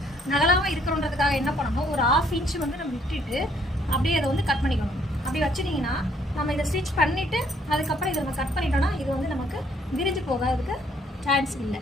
நகலாமல் இருக்கிறோன்றதுக்காக என்ன பண்ணணும், ஒரு 1/2 இன்ச்சு வந்து நம்ம விட்டுட்டு அப்படியே அதை வந்து கட் பண்ணிக்கணும். அப்படி வச்சுட்டிங்கன்னா நம்ம இதை ஸ்டிச் பண்ணிவிட்டு அதுக்கப்புறம் இதை நம்ம கட் பண்ணிட்டோம்னா இது வந்து நமக்கு விரிஞ்சு போகிறதுக்கு சான்ஸ் இல்லை.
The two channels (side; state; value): both; normal; correlation 0.65